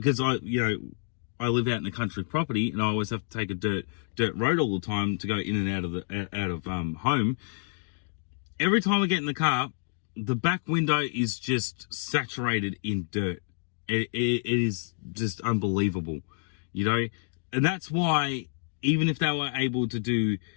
I live out in a country property, and I always have to take a dirt road all the time to go in and out of home. Every time I get in the car, the back window is just saturated in dirt. It is just unbelievable. And that's why, even if they were able to do,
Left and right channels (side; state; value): right; silent; digital silence